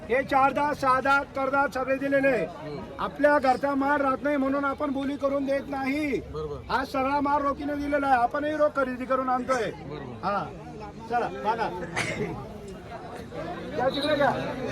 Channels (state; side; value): identical; both; correlation 1.00